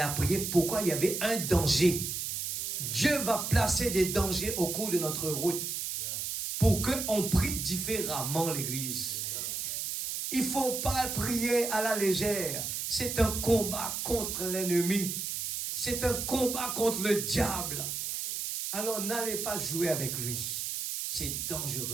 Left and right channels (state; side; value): noise; right; hiss, 3 dB below the sound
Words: prié, pourquoi il y avait un danger. Dieu va placer des dangers au cours de notre route pour qu'on prie différemment l'Église. Il ne faut pas prier à la légère. C'est un combat contre l'ennemi. C'est un combat contre le diable. Alors n'allez pas jouer avec lui. C'est